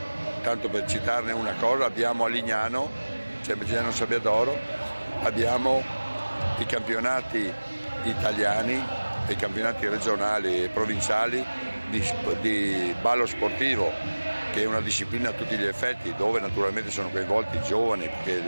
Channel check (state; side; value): inverted; both; correlation -1.00